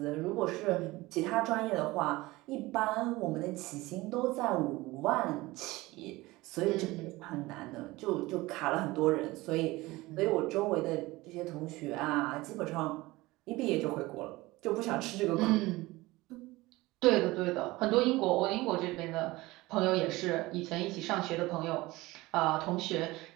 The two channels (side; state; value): left; quieter; 20.2 dB